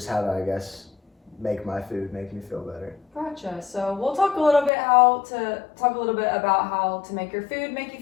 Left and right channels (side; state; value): right; drops out; at 4.7 s